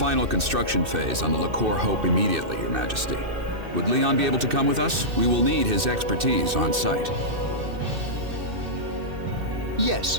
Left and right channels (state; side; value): late; left; 2.6 ms